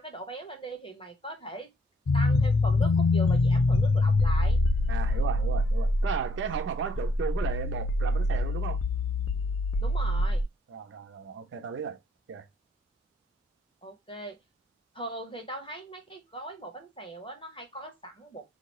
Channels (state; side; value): normal; both; correlation 0.71